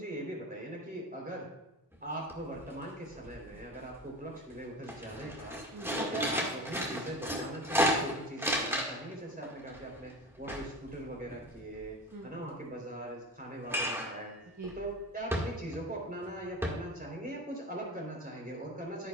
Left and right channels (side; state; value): both; normal; correlation 0.31